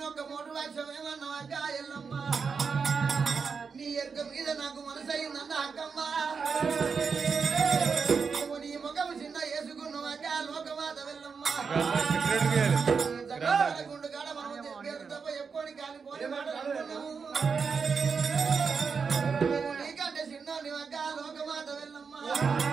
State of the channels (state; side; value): quieter; left; 5.5 dB